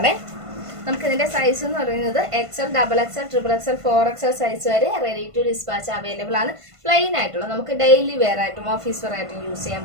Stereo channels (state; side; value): late; left; 1.5 ms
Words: നമുക്ക് ഇതിന്റെ സൈസ് എന്ന് പറയുന്നത് XL, XXL, XXL, 4XL size വരെ റെഡി ടു ഡിസ്പാച്ച് അവൈലബിൾ ആണ്. പ്ലെയിൻ ആയിട്ടുള്ള നമുക്ക് ഡെയിലി വെയർ ആയിട്ടും ഓഫീസ് വെയർ ആയിട്ടും യൂസ് ചെയ്യാൻ